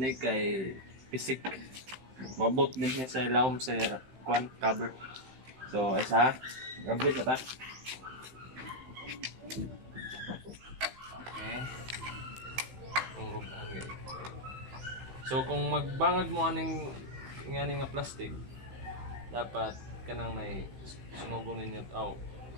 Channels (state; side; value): late; left; 15 ms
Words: kay pisik. Mabot din niya sa ilawom sa kwan cover. So isa, gamit na ta. Okay. Tungrugan guys. So kung magbangag mo aning ngani nga plastic, dapat kanang nay sunugon ninyo